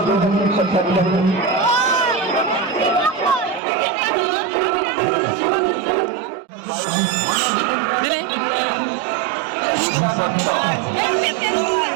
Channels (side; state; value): left; drops out; at 3.6 s